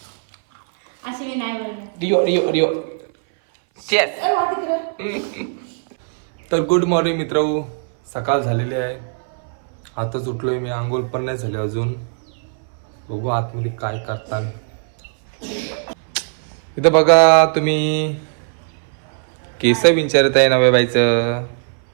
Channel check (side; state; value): left; silent; 60 dB below the other